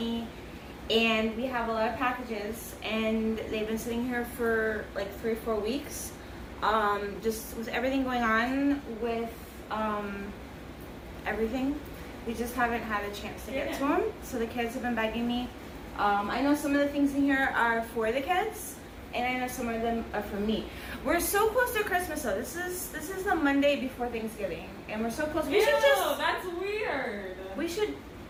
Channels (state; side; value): identical; both; correlation 1.00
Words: and we have a lot of packages, and they've been sitting here for like 3 or 4 weeks. Just with everything going on with everything, we just haven't had a chance to get to them. So the kids have been begging me. I know some of the things in here are for the kids, and I know some of them are for me. We're so close to Christmas though. This is the Monday before Thanksgiving, and we're so close. We should just. That's weird. We should.